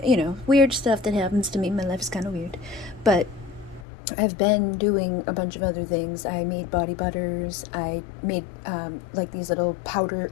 weird stuff that happens to me. My life is kind of weird. But I've been doing a bunch of other things. I made body butters. I made like these little powder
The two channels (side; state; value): right; drops out; at 3.9 s